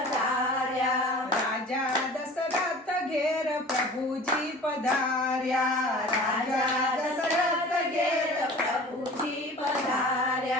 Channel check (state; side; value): normal; both; correlation 0.42